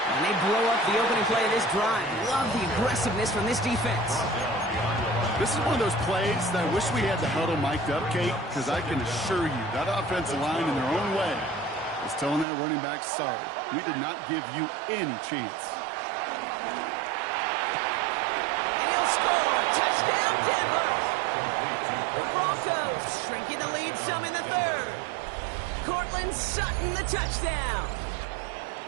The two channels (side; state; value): left; drops out; at 12.5 s